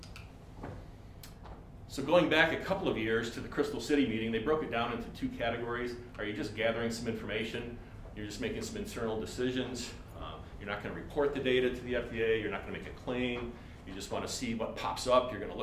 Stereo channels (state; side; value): identical; both; correlation 1.00